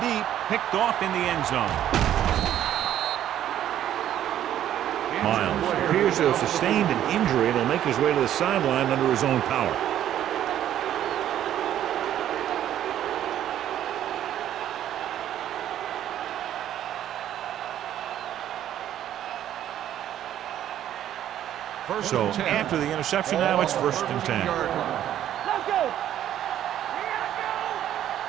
deep. Picked off in the end zone. Miles appears to have sustained an injury and will make his way to the sideline under his own power. So after the interception, now it's 1st and 10. Let's go.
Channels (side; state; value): left; quieter; 11.4 dB